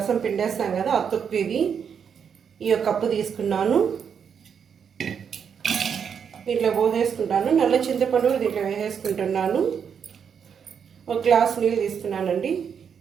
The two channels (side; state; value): left; quieter; 7.3 dB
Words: పిండేస్తాం కదా, ఆ తొక్కు ఇది. ఈ కప్పు తీసుకున్నాను, దీంట్లో పోసేసుకుంటాను. నల్ల చింతపండు దీంట్లో వేసేసుకుంటున్నాను. ఒక గ్లాస్ నీళ్ళు తీసుకున్నానండి.